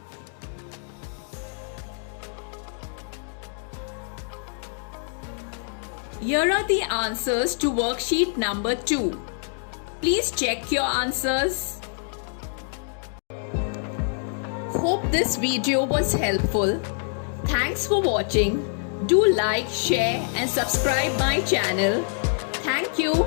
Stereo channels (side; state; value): right; silent; 55 dB below the other